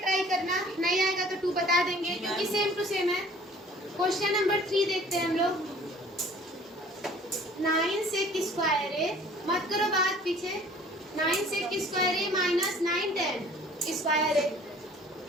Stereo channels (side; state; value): both; normal; correlation 0.51